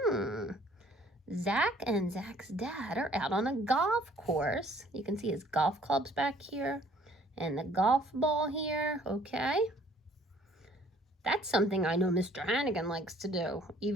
Zach and Zach's dad are out on a golf course. You can see his golf clubs back here and the golf ball here, okay? That's something I know Mr. Hannigan likes to do.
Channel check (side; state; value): both; normal; correlation 0.58